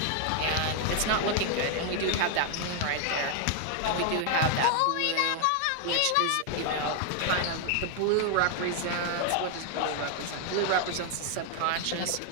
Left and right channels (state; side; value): different; both; correlation 0.00